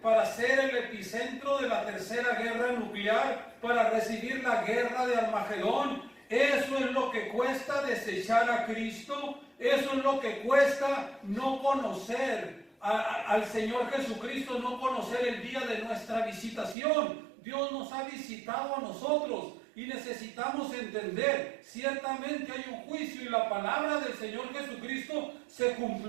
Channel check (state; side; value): drops out; left; at 16.8 s